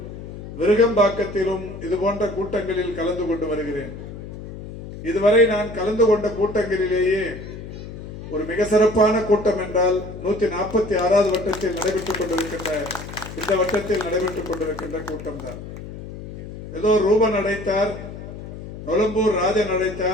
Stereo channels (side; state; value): left; noise; hum, 11 dB below the sound